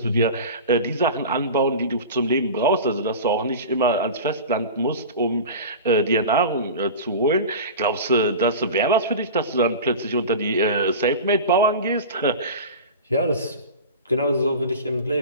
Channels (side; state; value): both; inverted; correlation -0.32